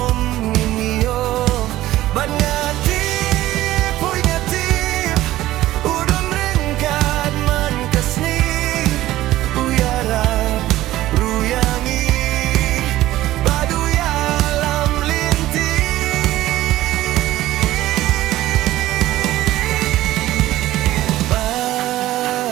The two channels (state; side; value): quieter; left; 15.4 dB